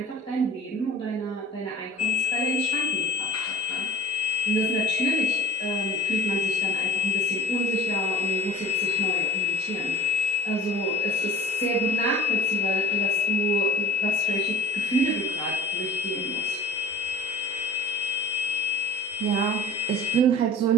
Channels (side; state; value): both; normal; correlation 0.42